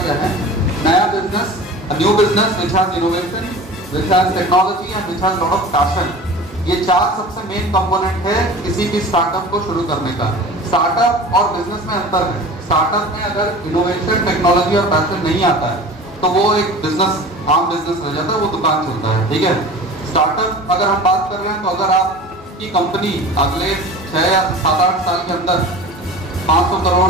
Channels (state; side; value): normal; both; correlation 0.38